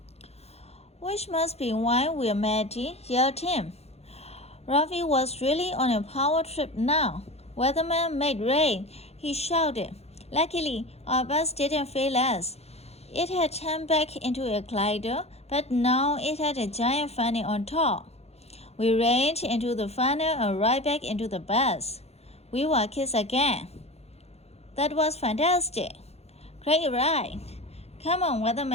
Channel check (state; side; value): late; right; 0.30 ms